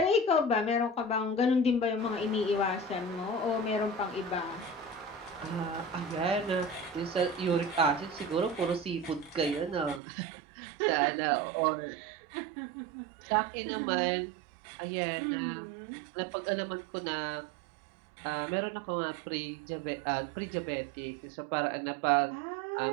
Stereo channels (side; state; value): left; drops out; at 10.0 s